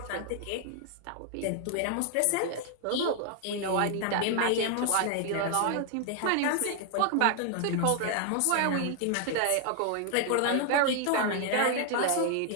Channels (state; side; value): different; both; correlation 0.00